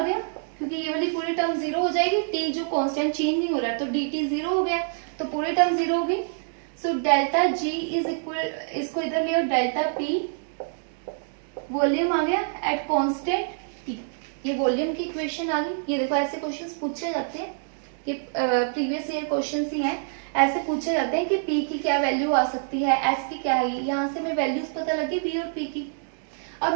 गया, क्योंकि ये वाली पूरी टर्म 0 हो जाएगी, टी जो कांस्टेंट चेंज नहीं हो रहा है, तो डी टी 0 हो गया, तो पूरी टर्म 0 हो गई। So delta g is equal, इसको इधर ले, डेल्टा पी वॉल्यूम आ गया एट कांस्टेंट टी, ये वॉल्यूम की इक्वेशन आ गई। ये देखो ऐसे क्वेश्चंस पूछे जाते हैं, ये प्रीवियस ईयर क्वेश्चंस ही हैं, ऐसे पूछे जाते हैं कि पी की क्या वैल्यू आ सकती है, एस की क्या है, यहाँ से हमें वैल्यूज पता लगी पी और पी की।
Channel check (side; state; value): left; silent; digital silence